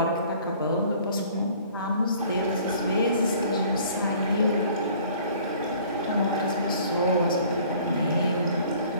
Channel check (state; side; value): inverted; both; correlation -0.53